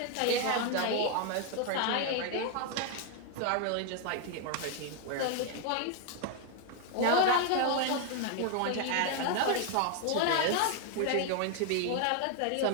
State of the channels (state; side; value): different; both; correlation 0.01